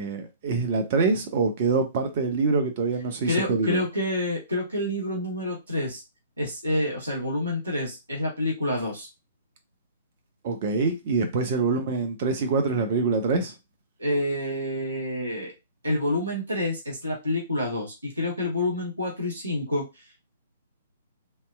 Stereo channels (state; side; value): inverted; both; correlation -0.48